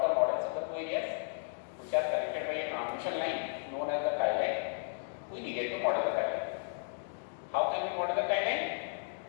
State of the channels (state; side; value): silent; right; digital silence